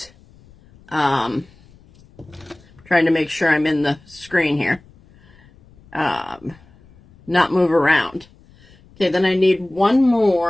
trying to make sure I'm in the screen here, not move around. Okay, then I need one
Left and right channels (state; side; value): noise; left; rumble, 27 dB below the sound